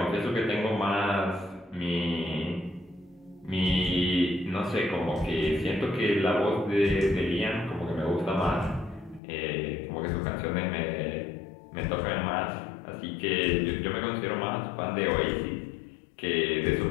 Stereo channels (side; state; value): right; drops out; at 9.2 s